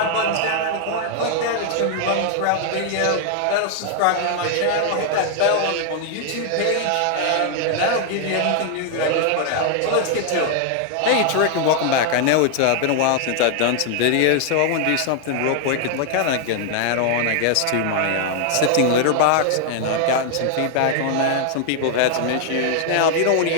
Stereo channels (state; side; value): different; both; correlation 0.00